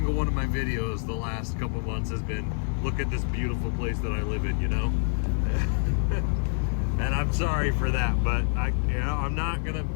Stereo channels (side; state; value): right; silent; 60 dB below the other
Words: one of my videos the last couple months has been, look at this beautiful place that I live in, you know? And I'm sorry for that, but I'm not gonna.